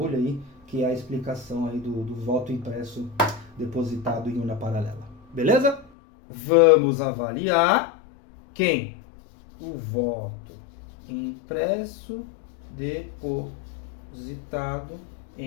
aí, que é a explicação aí do voto impresso depositado em urna paralela. Beleza? Vamos avaliar quem? O voto impresso depositado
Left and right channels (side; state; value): right; drops out; at 5.9 s